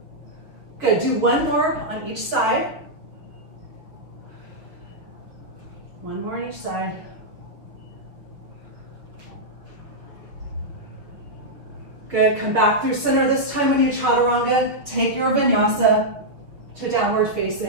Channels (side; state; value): left; late; 6.0 ms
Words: Good, do one more on each side. One more on each side. Good, come back through center. This time when you chaturanga, take your vinyasa to downward